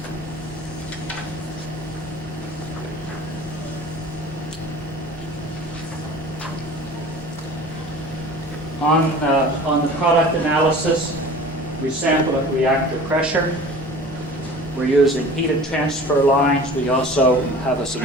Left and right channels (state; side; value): normal; both; correlation 0.42